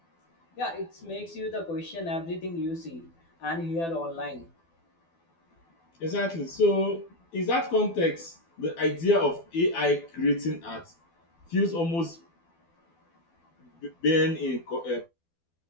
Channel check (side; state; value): right; late; 12 ms